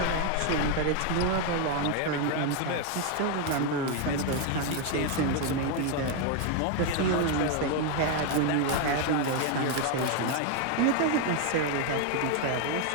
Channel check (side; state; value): both; different; correlation 0.01